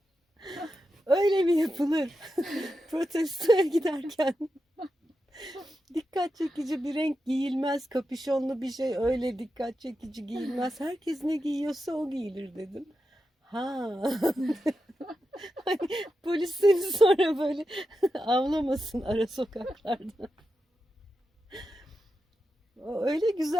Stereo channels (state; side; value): normal; both; correlation 0.89